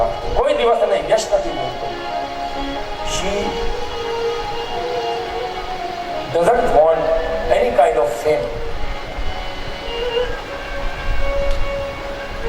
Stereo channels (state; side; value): identical; both; correlation 1.00